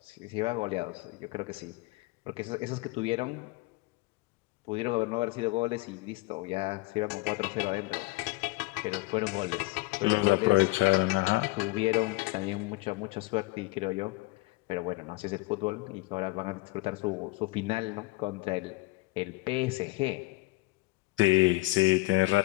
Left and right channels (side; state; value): right; quieter; 22.1 dB